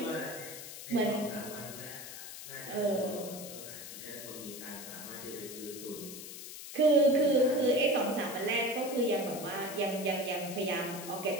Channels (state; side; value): noise; left; hiss, 11 dB below the sound